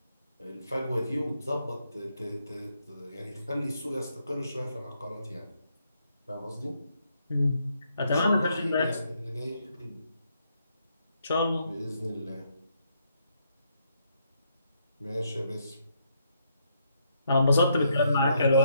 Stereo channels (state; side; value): inverted; both; correlation -0.75